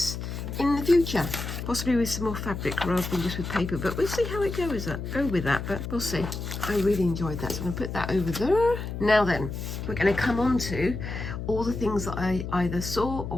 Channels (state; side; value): noise; left; hum, 6 dB below the sound